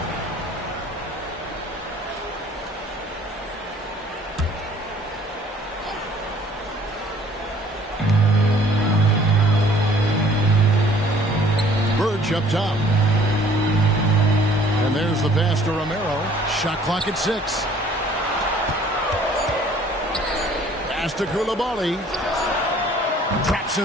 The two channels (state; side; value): normal; both; correlation 0.55